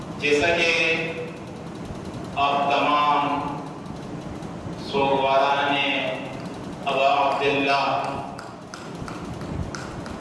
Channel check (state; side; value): identical; both; correlation 1.00